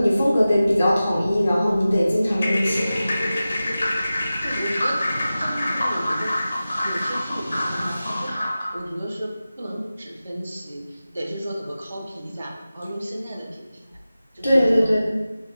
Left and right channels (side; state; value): both; inverted; correlation -0.95